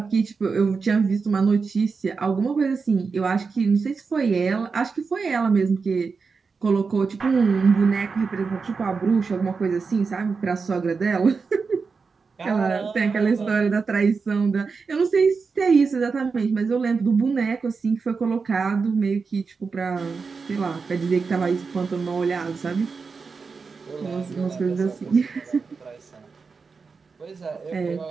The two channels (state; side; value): quieter; left; 4.9 dB